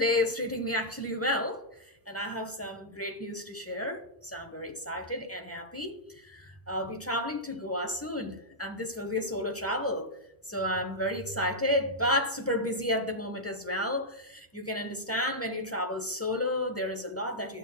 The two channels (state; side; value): normal; both; correlation -0.09